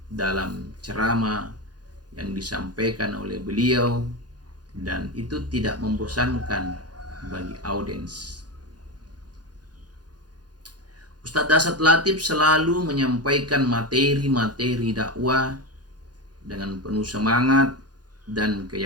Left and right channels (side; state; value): left; late; 0.69 ms